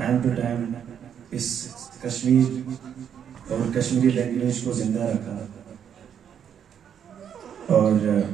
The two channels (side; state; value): left; quieter; 8.5 dB